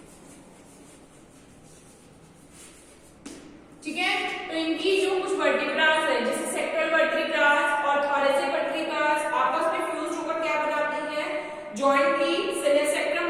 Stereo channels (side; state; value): both; identical; correlation 1.00